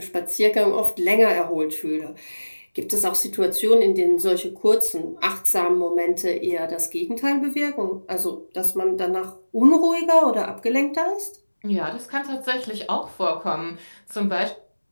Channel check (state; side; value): inverted; both; correlation -1.00